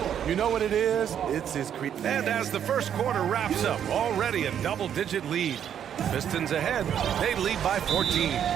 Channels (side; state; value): left; quieter; 9.2 dB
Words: You know what it is? It's his creativity. And as the first quarter wraps up, already a double-digit lead. Pistons ahead. They lead by 14.